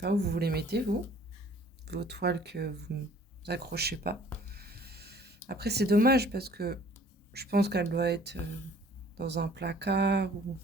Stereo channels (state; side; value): normal; both; correlation 0.54